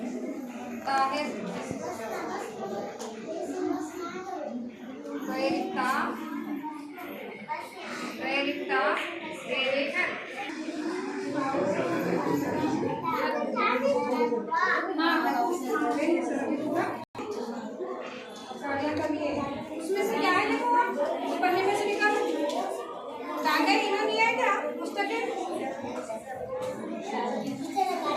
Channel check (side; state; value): both; identical; correlation 1.00